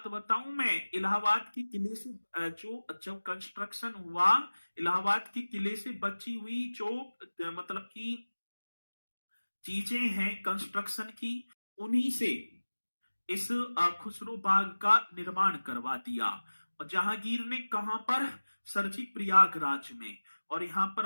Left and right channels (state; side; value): inverted; both; correlation -1.00